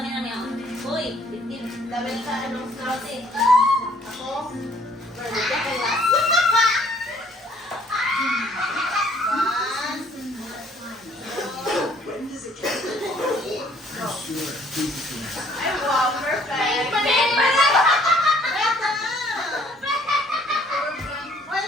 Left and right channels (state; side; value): normal; both; correlation 0.60